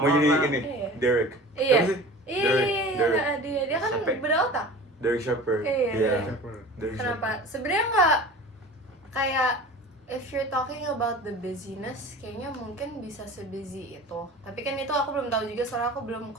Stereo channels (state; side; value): normal; both; correlation 0.38